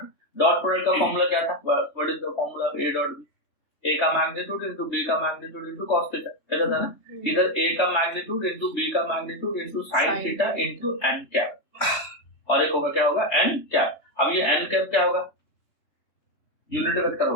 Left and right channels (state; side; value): late; right; 3.2 ms